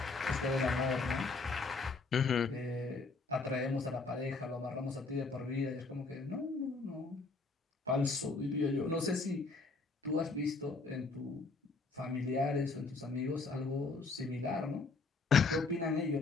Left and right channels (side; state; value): right; quieter; 4.0 dB